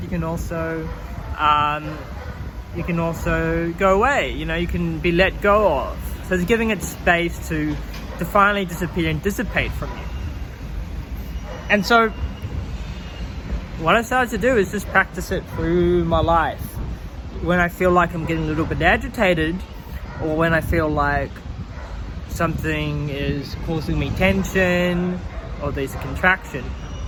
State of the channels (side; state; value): both; identical; correlation 1.00